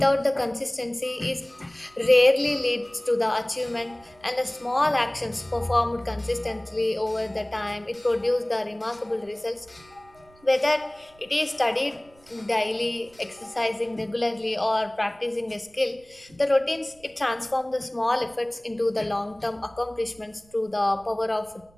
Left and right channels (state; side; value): noise; right; rumble, 28 dB below the sound